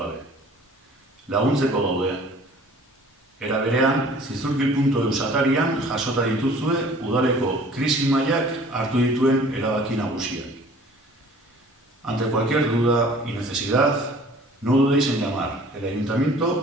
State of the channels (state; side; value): normal; both; correlation 0.50